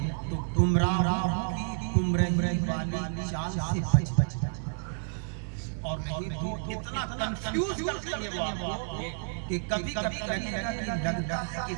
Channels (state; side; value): silent; left; digital silence